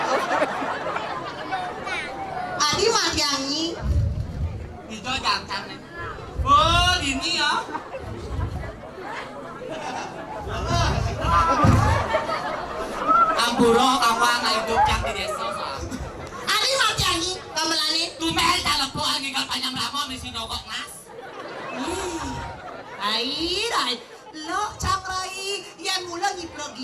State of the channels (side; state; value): both; identical; correlation 1.00